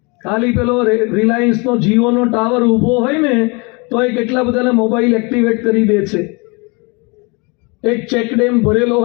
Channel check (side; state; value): right; quieter; 29.4 dB